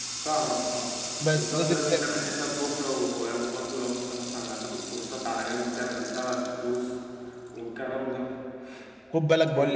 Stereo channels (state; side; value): identical; both; correlation 1.00